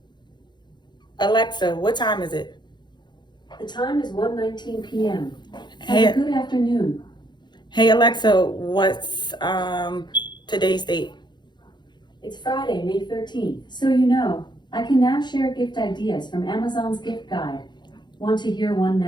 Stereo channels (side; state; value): right; late; 0.21 ms